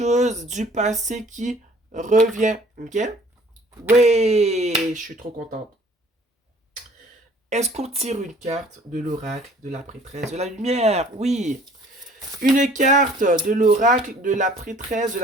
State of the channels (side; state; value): both; normal; correlation 0.54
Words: du passé qui revient. Ok? Oui, je suis trop contente. Est-ce qu'on tire une carte de l'oracle de la prêtresse de la lumière? Oui. Une carte de l'oracle de la prêtresse de